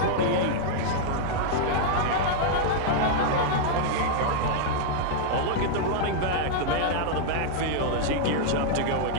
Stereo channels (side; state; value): both; different; correlation -0.01